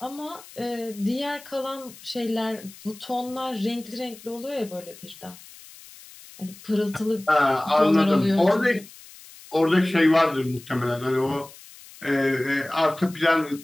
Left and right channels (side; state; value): left; noise; hiss, 20 dB below the sound